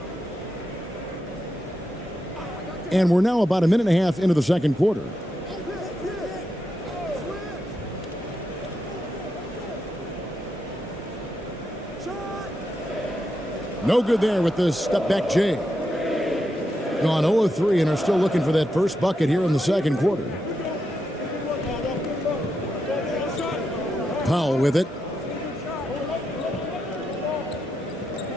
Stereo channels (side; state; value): both; normal; correlation 0.85